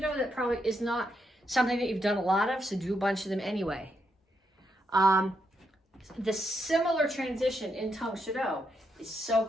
that probably is not something that you've done a lot of, so do a bunch of them anyway. The similar transition in Tang Soo Do is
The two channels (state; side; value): normal; both; correlation 0.80